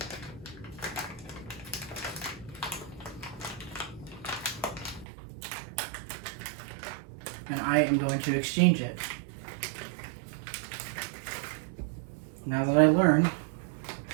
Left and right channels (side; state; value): left; drops out; at 5.1 s